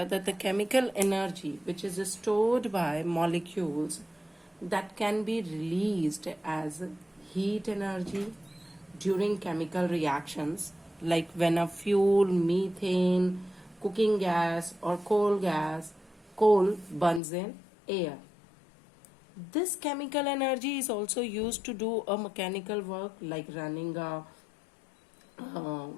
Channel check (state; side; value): drops out; right; at 17.2 s